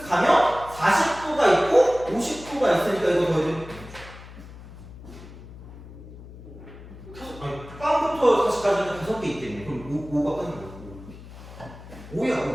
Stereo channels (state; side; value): noise; left; hum, 16 dB below the sound